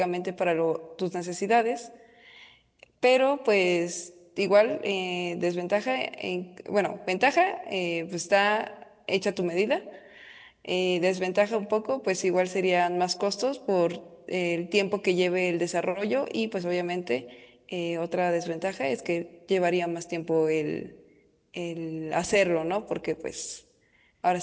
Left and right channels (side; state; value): both; identical; correlation 1.00